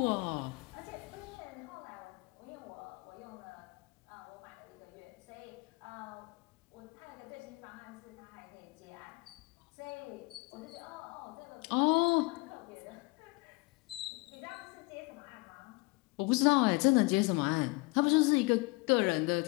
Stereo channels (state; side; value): quieter; right; 25.6 dB